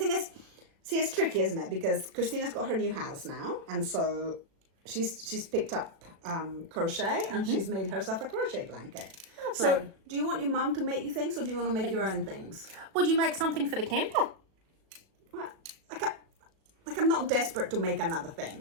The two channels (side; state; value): left; late; 36 ms